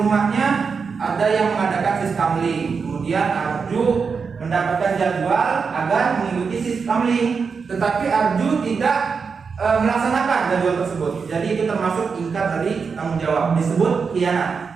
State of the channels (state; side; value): quieter; left; 5.5 dB